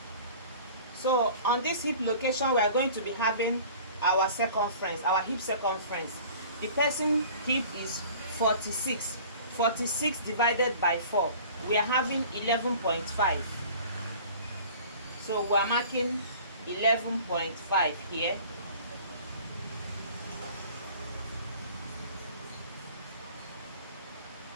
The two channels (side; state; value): both; inverted; correlation -0.46